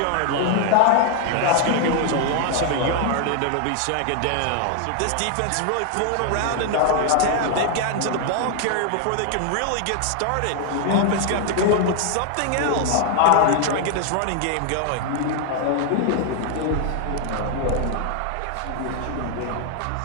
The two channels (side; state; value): both; different; correlation 0.00